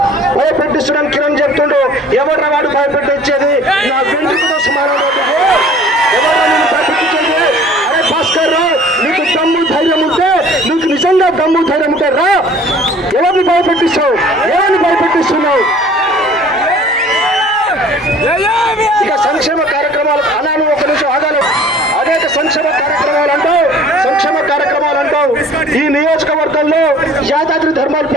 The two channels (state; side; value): normal; both; correlation 0.50